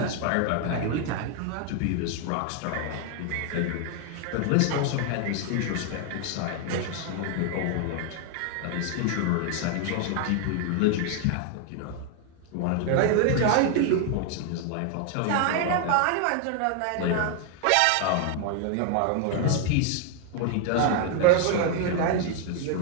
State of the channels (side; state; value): both; different; correlation 0.00